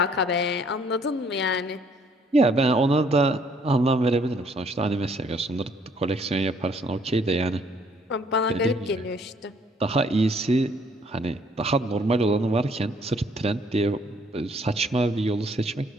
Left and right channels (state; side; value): normal; both; correlation 0.64